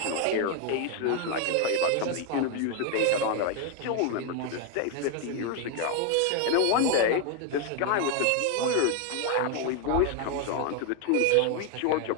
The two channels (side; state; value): both; different; correlation 0.01